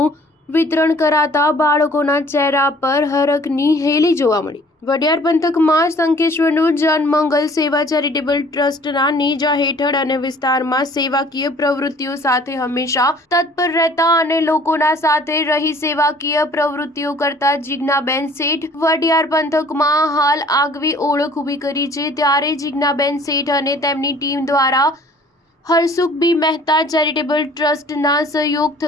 વિતરણ કરાતા બાળકોના ચહેરા પર હરખની હેલી જોવા મળી. વઢિયાર પંથકમાં શંખેશ્વરનું જનમંગલ સેવા ચેરિટેબલ ટ્રસ્ટના નેજા હેઠળ અને વિસ્તારમાં સેવાકીય પ્રવૃત્તિઓ સાથે હંમેશા તત્પર રહેતા અને લોકોના સાથે રહી સેવાકીય પ્રવૃત્તિઓ કરતા જીજ્ઞાબેન શેઠ વઢિયાર પંથકમાં હાલ આગવી ઓળખ ઊભી કરી છે. ત્યારે જીજ્ઞાબેન શેઠ અને તેમની ટીમ દ્વારા હરસુખ બી મહેતા ચેરિટેબલ ટ્રસ્ટના સહયોગ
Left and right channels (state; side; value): normal; both; correlation 0.53